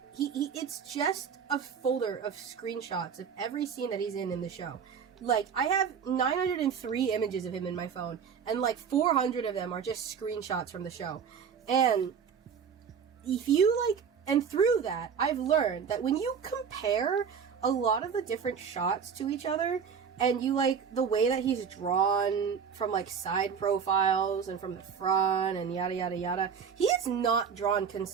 It's just a folder of screenshots of every scene that he's in the show. Like, I have 903 images of him in my phone, and, like, 400 of them are just screenshots from the show. And if you, like... And through that, I've learned that when you compare a lot of the different shots to each other, and you like the way that he's drawn from like side profiles and from the front and yada yada yada, he is not drawn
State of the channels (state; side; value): quieter; left; 6.9 dB